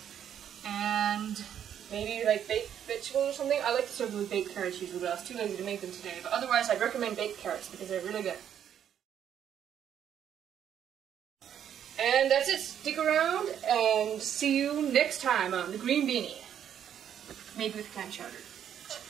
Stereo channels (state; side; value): quieter; left; 9.4 dB